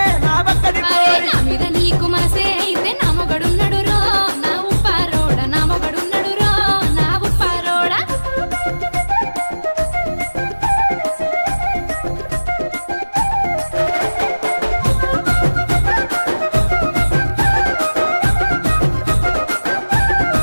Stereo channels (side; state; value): both; inverted; correlation -1.00